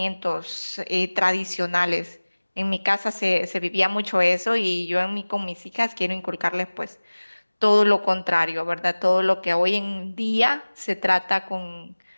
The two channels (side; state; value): both; inverted; correlation -1.00